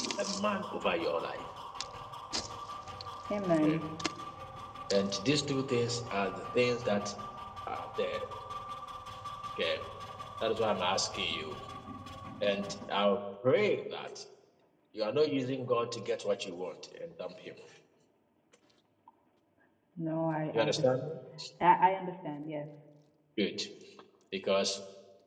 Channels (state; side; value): identical; both; correlation 1.00